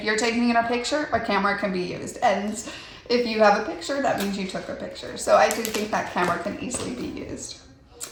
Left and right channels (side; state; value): both; identical; correlation 1.00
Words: you're taking in a picture, a camera can be used. And if you have a picture, that means you took a picture. So I do think that camera can easily be used